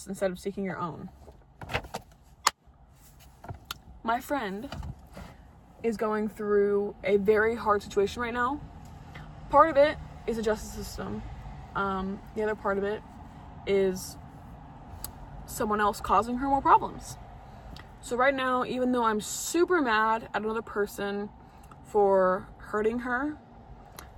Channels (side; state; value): both; identical; correlation 1.00